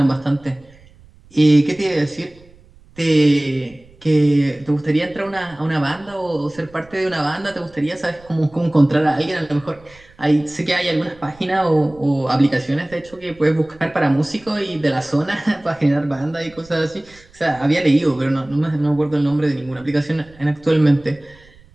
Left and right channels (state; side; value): noise; right; rumble, 26 dB below the sound